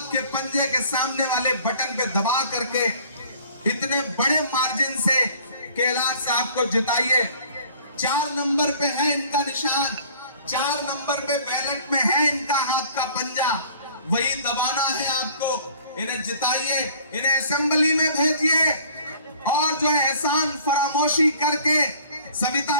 के पंजे के सामने वाले बटन पे दबा करके इतने बड़े मार्जिन से केएलआर साहब को जिताइए। 4 नंबर पे है इनका निशान, 4 नंबर पे बैलेट में है इनका हाथ का पंजा, वही दबाना है आपको। इन्हें जिताइए, इन्हें असेंबली में भेजिए और जो है एहसान फरामोशी करके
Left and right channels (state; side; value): inverted; both; correlation -0.52